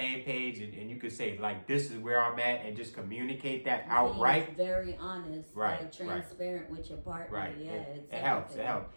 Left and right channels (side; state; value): both; inverted; correlation -1.00